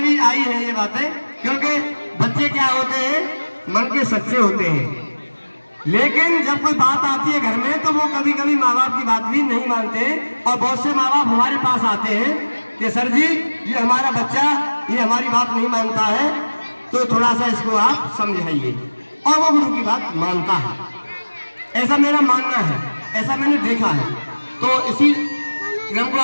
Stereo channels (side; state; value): both; inverted; correlation -1.00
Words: आई है ये बातें। क्योंकि बच्चे क्या होते हैं, मन के सच्चे होते हैं, लेकिन जब कोई बात आती है घर में तो वो कभी कभी माँ बाप की बात भी नहीं मानते। और बहुत से माँ बाप हमारे पास आते हैं कि सर जी, ये हमारा बच्चा ये हमारी बात नहीं मानता है, तो थोड़ा सा इसको आप समझाइए। और वो गुरु की बात मानता है, ऐसा मेरा मानना है, ऐसा मैंने देखा है। तो इसी क्रम को